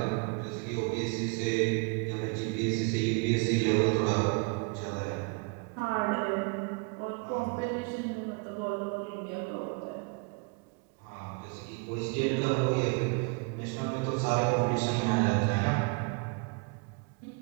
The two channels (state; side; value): quieter; left; 32.8 dB